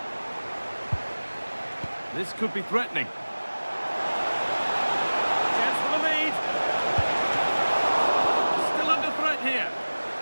This could be threatening. Chance for the lead. Still under threat here.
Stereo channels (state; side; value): inverted; both; correlation -1.00